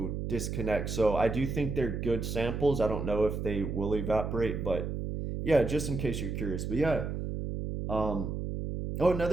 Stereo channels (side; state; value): right; noise; hum, 4 dB below the sound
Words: disconnect. So I do think they're good samples. I don't know if they will evaporate, but yeah, just in case you're curious. But yeah, oh,